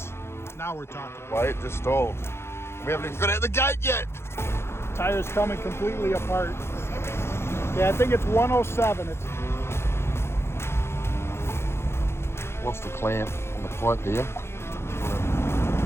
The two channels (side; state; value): right; late; 0.12 ms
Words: we're talking. Why it just stalled? We haven't even got at the gate yet. Tires coming completely apart. Yeah, I think it's 107. It's lost the clamp on the pipe there.